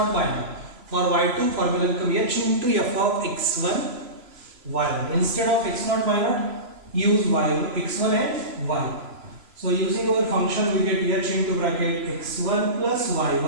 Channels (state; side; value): late; left; 3.0 ms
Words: y0. For y2 formula become h into f of x1 y1. Instead of x0 y0, use y1, x1 and y. So using our function we get h into bracket x1 plus